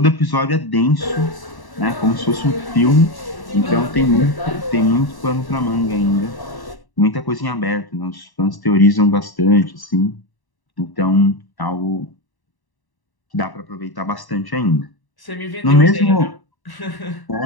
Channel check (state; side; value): late; right; 1.1 ms